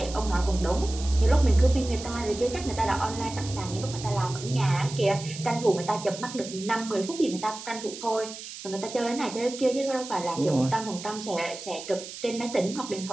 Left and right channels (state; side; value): noise; right; hiss, 12 dB below the sound